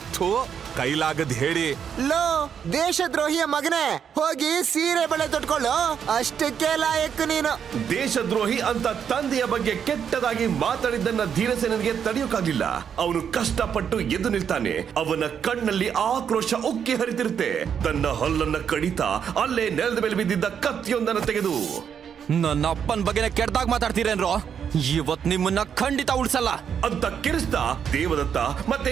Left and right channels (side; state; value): left; quieter; 7.8 dB